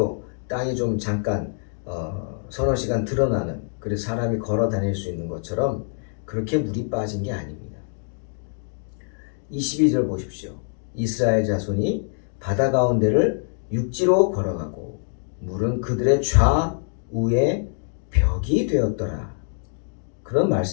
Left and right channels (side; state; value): right; silent; digital silence